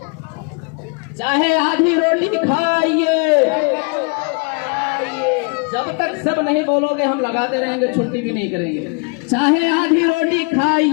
चाहे आधी रोटी खाइए, जब तक सब नहीं बोलोगे हम लगाते रहेंगे, छुट्टी भी नहीं करेंगे। चाहे आधी रोटी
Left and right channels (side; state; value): right; quieter; 33.9 dB